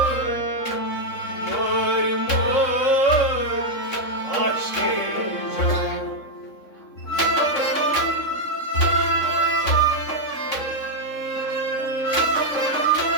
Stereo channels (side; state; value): right; late; 3.7 ms